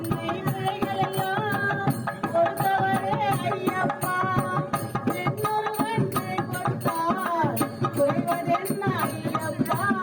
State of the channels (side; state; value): both; identical; correlation 1.00